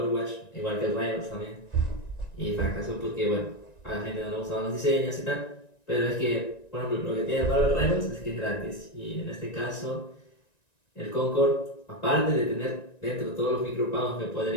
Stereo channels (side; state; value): right; late; 1.9 ms